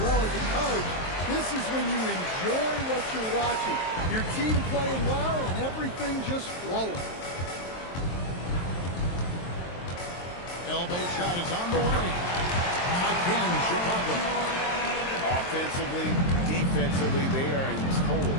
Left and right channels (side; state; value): right; late; 23 ms